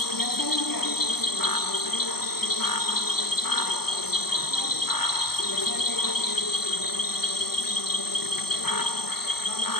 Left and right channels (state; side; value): late; right; 0.96 ms